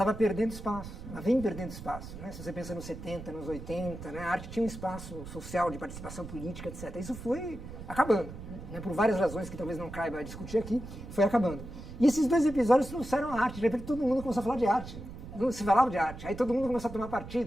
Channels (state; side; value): noise; right; rumble, 12 dB below the sound